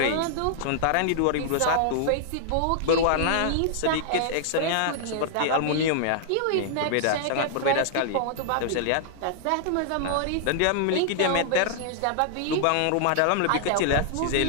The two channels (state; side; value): different; both; correlation -0.01